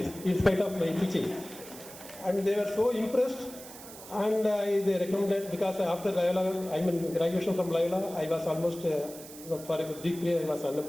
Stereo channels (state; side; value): noise; right; hiss, 16 dB below the sound